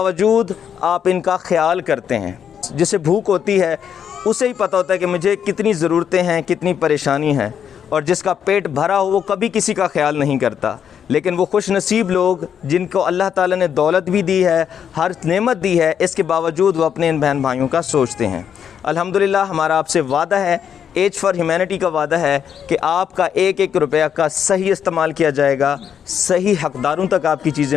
आप इनका ख्याल करते हैं। जिसे भूख होती है उसे ही पता होता है कि मुझे कितनी ज़रूरतें हैं, कितनी परेशानी है। और जिसका पेट भरा हो वो कभी किसी का ख्याल नहीं करता। लेकिन वो खुश नसीब लोग जिनको अल्लाह ताला ने दौलत भी दी है, हर नेमत दी है, इसके बावजूद वो अपने इन बहन भाइयों का सोचते हैं। अल्हम्दुलिल्लाह हमारा आपसे वादा है, एज फॉर ह्यूमैनिटी का वादा है कि आपका एक एक रुपया का सही इस्तेमाल किया जाएगा, सही हक़दारों तक आपकी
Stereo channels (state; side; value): quieter; right; 8.3 dB